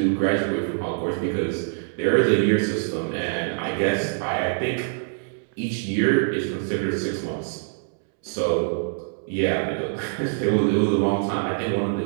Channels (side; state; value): left; silent; 62 dB below the other